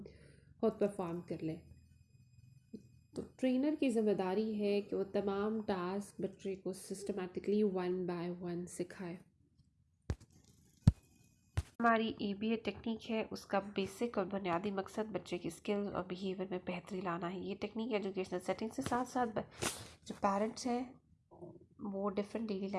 खुद परफॉर्म कर ले। तो ट्रेनर की ज़िम्मेदारी है कि वो तमाम टास्क बच्चे को सिस्टमैटिकली वन बाय वन सिखाए। हमारी एबीए टेक्निक है, उसका बेसिक और बुनियादी मकसद बच्चे की स्किल और बिहेवियर में बेहतरी लाना है। ये टेक्निक एजुकेशनल सेटिंग से साथ साथ जो पेरेंट्स हैं वो डिफरेंट डेली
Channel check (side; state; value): both; identical; correlation 1.00